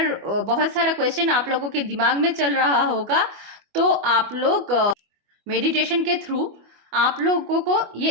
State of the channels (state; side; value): late; left; 25 ms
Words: बहुत सारा क्वेश्चन आप लोगों के दिमाग में चल रहा होगा तो आप लोग मेडिटेशन के थ्रू आप लोगों को ये